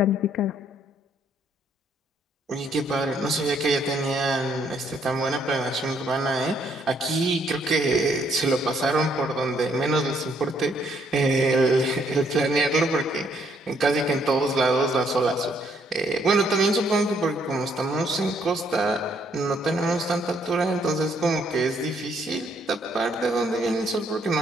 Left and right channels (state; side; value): normal; both; correlation 0.69